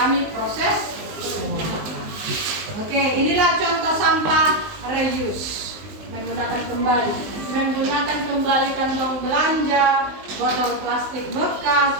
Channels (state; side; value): late; left; 19 ms